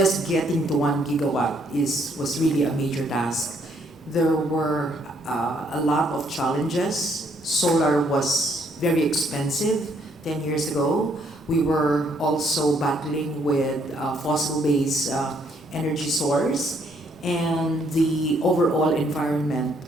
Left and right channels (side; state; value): both; normal; correlation 0.69